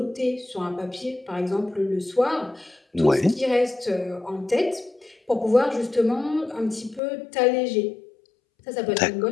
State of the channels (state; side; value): drops out; right; at 7.0 s